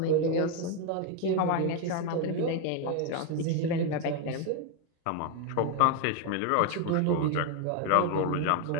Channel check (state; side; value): different; both; correlation 0.01